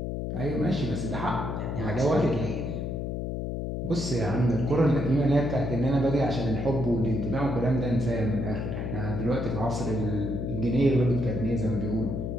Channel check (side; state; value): left; noise; hum, 3 dB below the sound